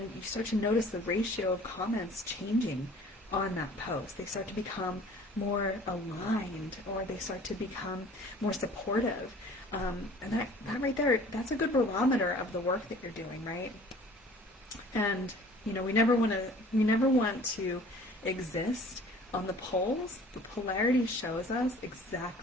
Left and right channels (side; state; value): both; normal; correlation 0.49